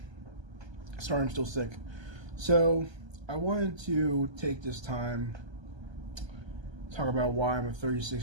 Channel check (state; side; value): late; left; 1.3 ms